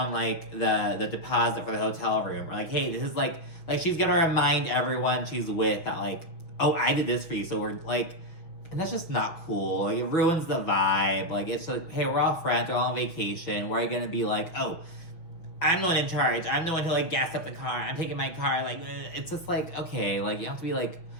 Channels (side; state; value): right; late; 6.2 ms